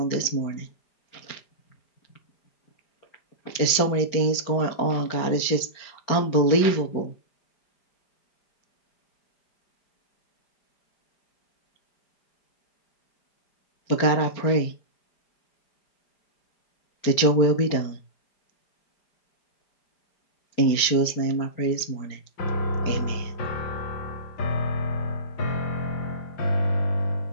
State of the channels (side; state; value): right; late; 4.4 ms